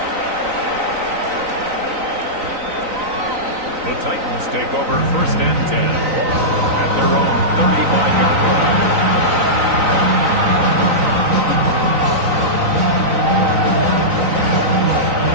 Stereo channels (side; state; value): left; late; 3.9 ms